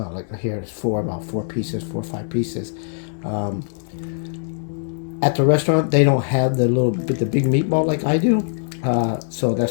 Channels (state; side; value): silent; right; digital silence